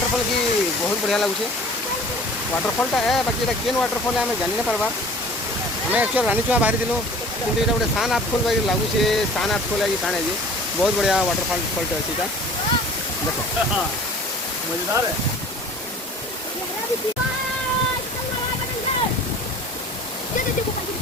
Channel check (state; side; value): normal; both; correlation 0.46